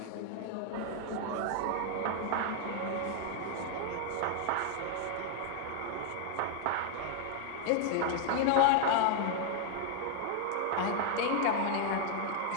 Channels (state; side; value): different; both; correlation 0.00